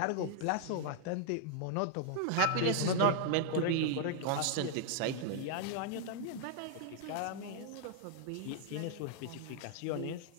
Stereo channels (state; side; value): different; both; correlation 0.00